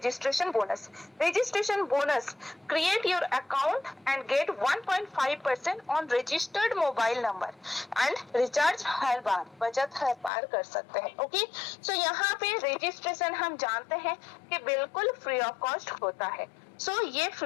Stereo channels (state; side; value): drops out; right; at 10.3 s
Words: bonus. Registration bonus, create your account and get 1.5% on registered mobile number and recharge हर बार, बचत हर बार कर सकते हैं। ओके, सो यहाँ पे रजिस्ट्रेशन हम जानते हैं कि बिल्कुल फ्री ऑफ कॉस्ट होता है। सो ये